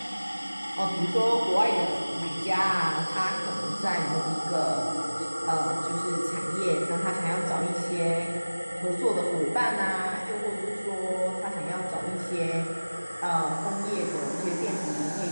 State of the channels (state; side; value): inverted; both; correlation -1.00